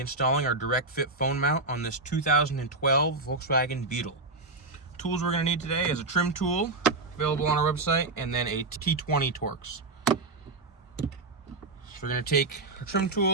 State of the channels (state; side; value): quieter; left; 3.3 dB